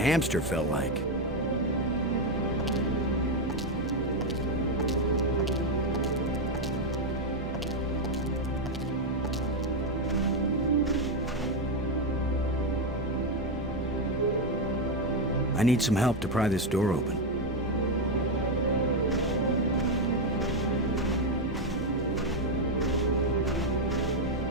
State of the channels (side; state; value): both; normal; correlation 0.05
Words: felt like. I need some help to pry this door open.